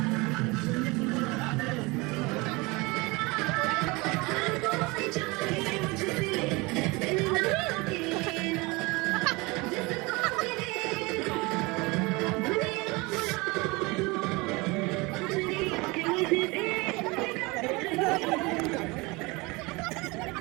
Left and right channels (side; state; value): left; quieter; 24.8 dB